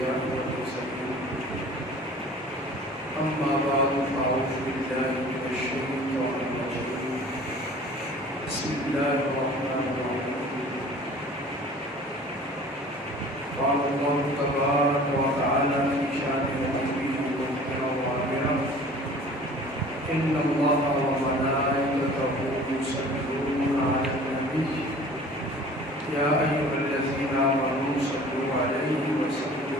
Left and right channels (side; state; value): both; normal; correlation 0.46